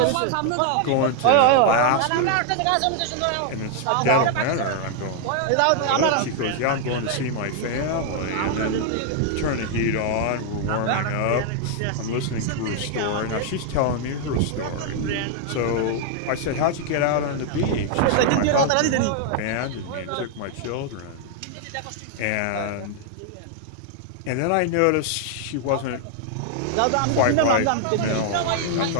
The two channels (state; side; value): different; both; correlation 0.00